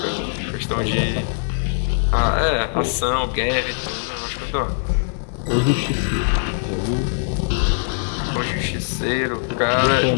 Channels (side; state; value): right; silent; 65 dB below the other